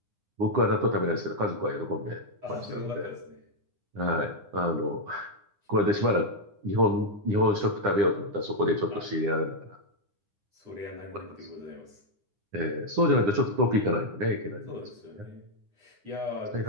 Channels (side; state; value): left; late; 9.8 ms